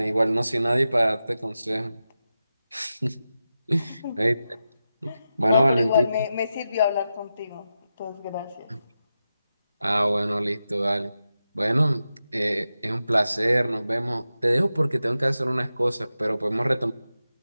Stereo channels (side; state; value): both; inverted; correlation -0.91